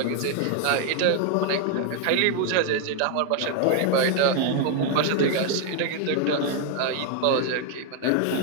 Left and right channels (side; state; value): both; different; correlation 0.00